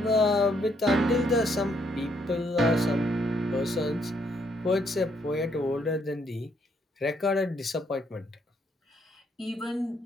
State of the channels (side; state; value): both; normal; correlation 0.71